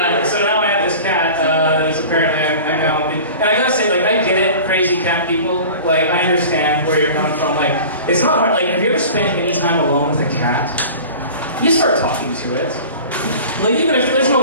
So now I have this cat that's apparently I'm now. And I gotta say, I get it, crazy cat people. Like, I understand where you're coming from. Like, it's not hard. Like, have you ever spent any time alone with a cat? You start talking to it. Like, even if there's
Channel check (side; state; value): both; inverted; correlation -0.39